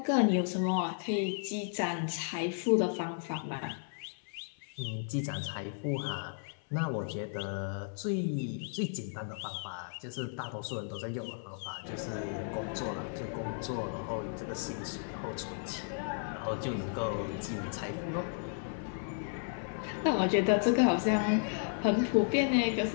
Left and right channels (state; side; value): silent; right; 55 dB below the other